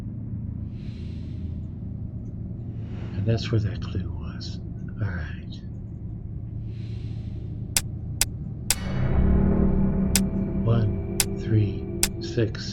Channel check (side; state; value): both; identical; correlation 1.00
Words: And that's where that clue was. All right. One, 3,